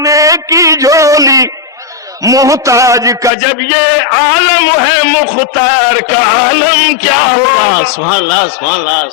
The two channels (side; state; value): right; drops out; at 3.3 s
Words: کی جھولی، محتاج کا جب یہ عالم ہے مختار کا عالم کیا ہوگا. سبحان اللہ سبحان اللہ